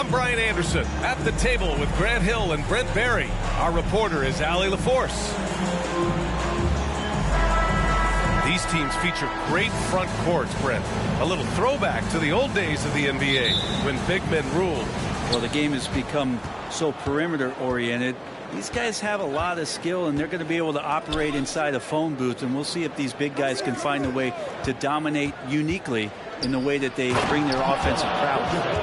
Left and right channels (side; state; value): both; identical; correlation 1.00